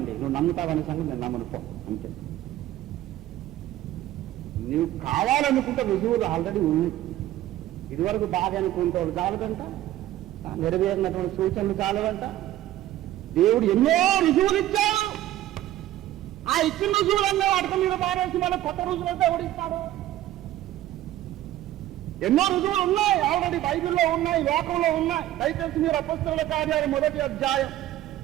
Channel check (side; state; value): left; quieter; 14.1 dB